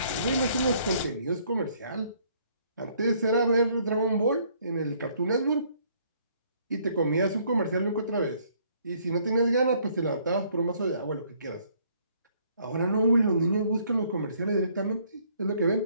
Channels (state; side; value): inverted; both; correlation -0.65